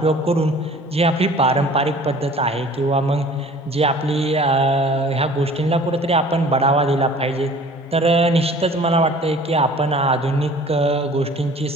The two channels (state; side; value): normal; both; correlation 0.48